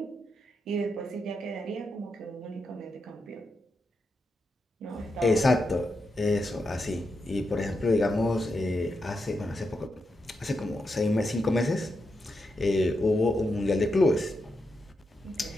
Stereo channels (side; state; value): both; normal; correlation 0.85